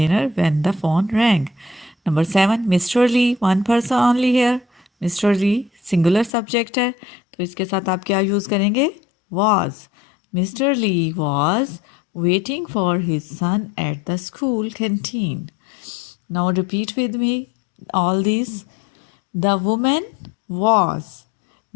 when the phone rang. Number 7, Mr. Lee, one person only here. Mr. Lee, singular subject है तो इसके साथ आप क्या use करेंगे? Was. Mr. Lee was waiting for his son at the school canteen. Now repeat with me all these. The woman was.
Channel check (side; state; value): right; drops out; at 6.3 s